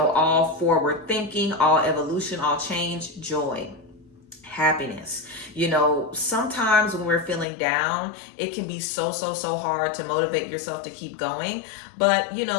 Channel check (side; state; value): right; drops out; at 7.5 s